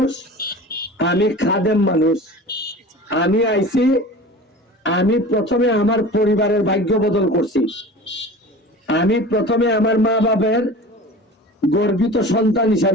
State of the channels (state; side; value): normal; both; correlation 0.38